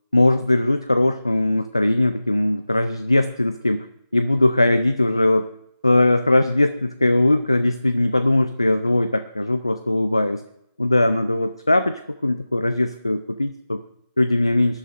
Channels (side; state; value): both; inverted; correlation -0.96